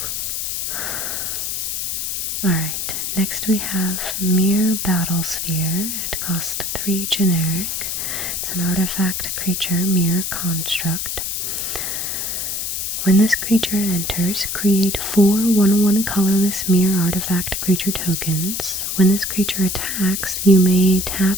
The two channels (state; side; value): noise; left; hiss, 2 dB below the sound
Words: Alright, next we have Mere Battlesphere. It costs 3 generic. It's an artifact creature, Mere Construct. When this creature enters, create 4 1/1 colorless Mere artifact creature tokens. When this creature attacks, you may